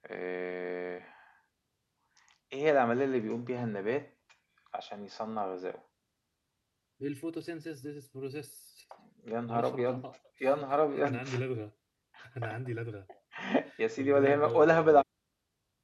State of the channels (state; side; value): identical; both; correlation 1.00